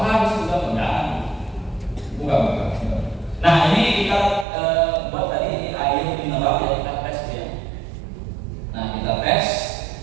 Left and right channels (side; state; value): left; drops out; at 4.5 s